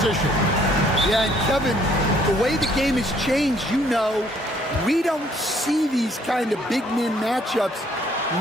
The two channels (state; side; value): normal; both; correlation 0.63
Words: Yeah, and Kevin, the way the game has changed, you know, we don't see these kind of big men matchups